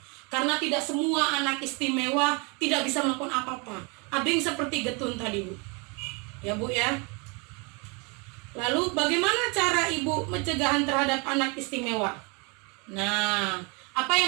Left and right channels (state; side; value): quieter; left; 31.1 dB